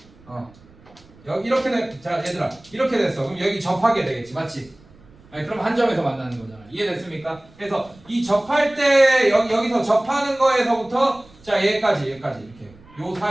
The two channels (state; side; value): noise; right; rumble, 26 dB below the sound